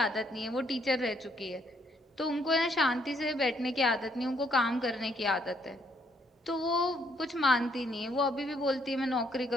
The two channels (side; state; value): both; normal; correlation 0.70